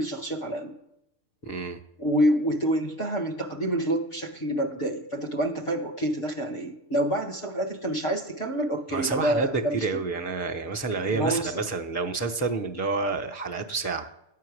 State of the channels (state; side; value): late; right; 6.6 ms